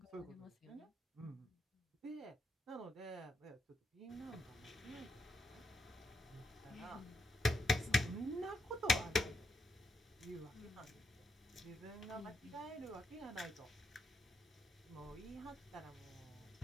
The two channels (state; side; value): normal; both; correlation 0.80